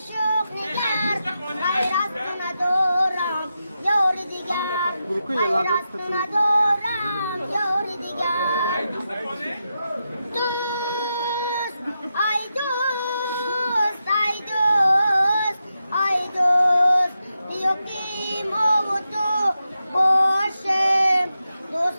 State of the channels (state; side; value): inverted; both; correlation -0.88